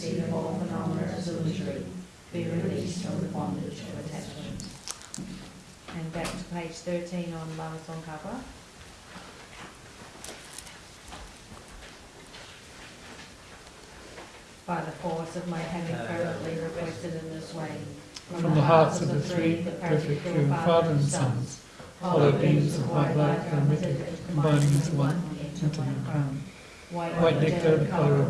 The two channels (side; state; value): both; identical; correlation 1.00